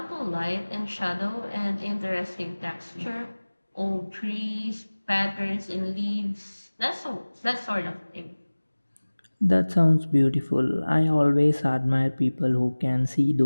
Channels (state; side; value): inverted; both; correlation -1.00